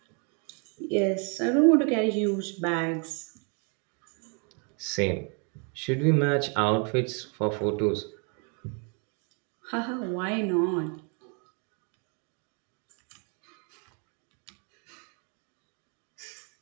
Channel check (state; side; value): quieter; left; 37.3 dB